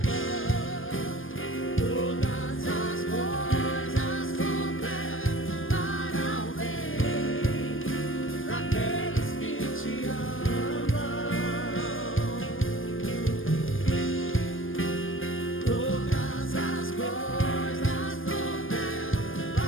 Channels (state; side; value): late; right; 0.59 ms